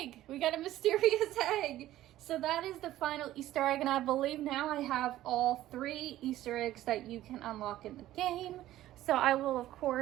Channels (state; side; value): quieter; left; 14.3 dB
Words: We got a mysterious egg! So that is the final Easter egg, and I believe now I have all 3 Easter eggs that you can unlock in the game. So I will, of